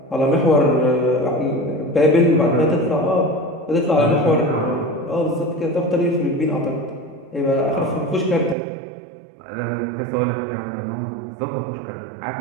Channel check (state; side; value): drops out; left; at 8.6 s